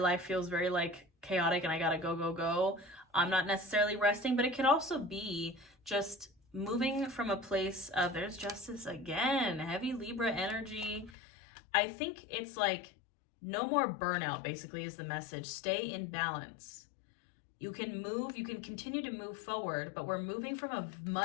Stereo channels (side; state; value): right; drops out; at 11.2 s